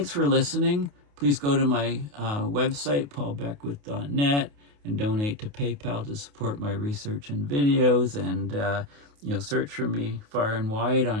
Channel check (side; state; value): left; late; 28 ms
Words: for listening. Please go to my website, paulbeckwith.net, and donate to PayPal to support my research and videos. And, search for me far and wide